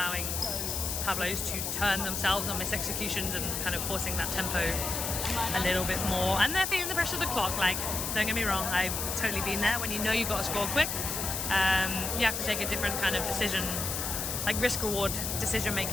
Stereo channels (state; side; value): noise; left; hiss, 2 dB below the sound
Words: Pablos to turn themselves on mis-executions and kind of forcing that tempo a little bit more. And they're feeling the pressure of the clock. Like, don't get me wrong, I've totally been there. When you know you've got to score quick, you have to take a different kind of decision, like risk-reward